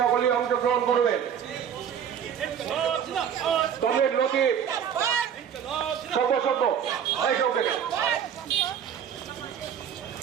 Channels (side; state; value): left; quieter; 8.5 dB